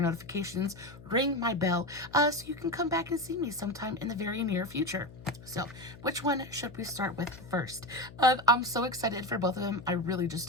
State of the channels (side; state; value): left; noise; hum, 18 dB below the sound